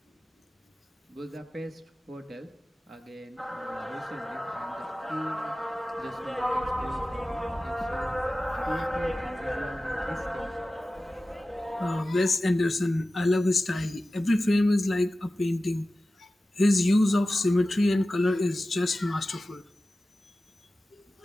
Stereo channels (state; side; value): normal; both; correlation 0.95